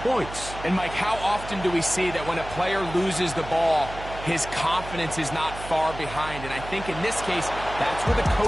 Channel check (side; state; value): right; noise; hum, 12 dB below the sound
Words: points. And Mike, how often do we see that when a player loses the ball, his confidence is not far behind? And I think in this case, that's where the